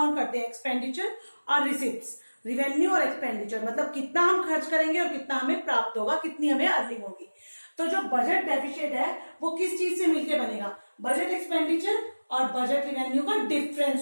करते हैं? एक्सपेंडिचर और रिसिप्ट्स, रिवेन्यू और एक्सपेंडिचर, मतलब कितना हम खर्च करेंगे और कितना हमें प्राप्त होगा, कितनी हमें अर्निंग होगी। तो जो बजट डेफिसिट है वो किस चीज से मिलकर बनेगा? बजट एक्सपेंडिचर और बजट रिवेन्यू का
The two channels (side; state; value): both; inverted; correlation -1.00